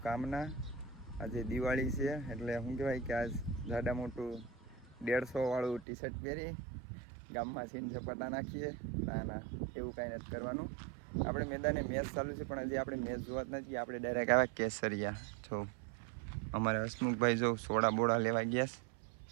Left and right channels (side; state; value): left; drops out; at 5.9 s